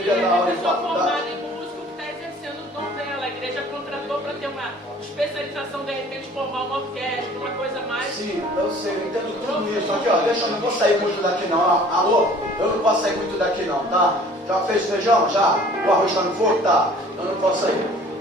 E dar é aula uma em pessoa formada faculdade. em músico que está exercendo o dom dela. A igreja contratou para ter uma especialização, de repente, formar uma orquestra, uma coisa mais. Sim, eu sei, eu entendo tudo isso. Aqui, ó, deixa, eu não vou sair muito daqui não. Alô? Eu não posso sair muito daqui não, tá? Já fez feijão? Já? O arroz está no fogo? Tá. Eu não posso sair.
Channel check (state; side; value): normal; both; correlation 0.51